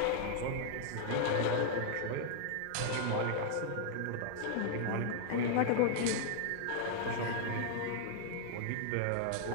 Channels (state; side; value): different; both; correlation -0.01